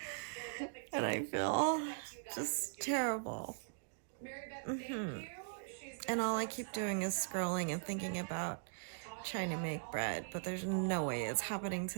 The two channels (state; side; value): silent; left; digital silence